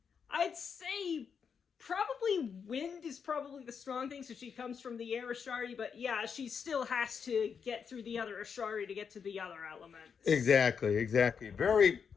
I'd say probably wind is probably the strong thing, so she comes from the air Ashari, but yeah, she still has to get through the other Ashari to get to the other elements. Exactly. Very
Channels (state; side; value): quieter; right; 6.6 dB